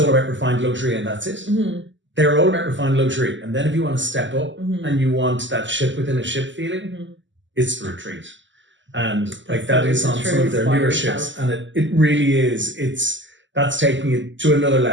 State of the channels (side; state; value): left; late; 0.54 ms